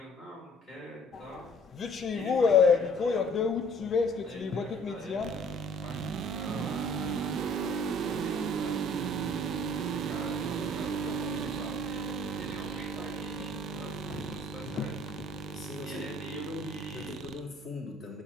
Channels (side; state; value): both; normal; correlation 0.54